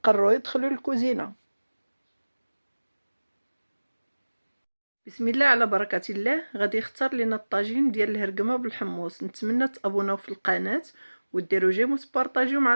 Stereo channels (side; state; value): both; inverted; correlation -1.00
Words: قرروا يدخلوا الكوزينة. بسم الله على بركة الله. غادي يختار لنا الطاجين ديال الهرقمة بالحمص. نتمنى تابوناو في القناة وديروا جيم وتبارطاجيو مع